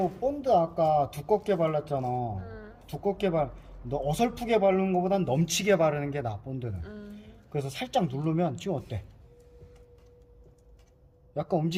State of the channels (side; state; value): both; identical; correlation 1.00